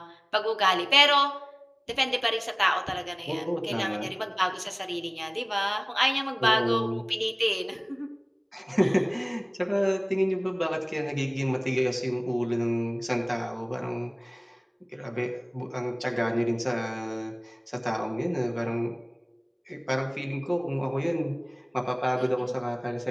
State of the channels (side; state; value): both; identical; correlation 1.00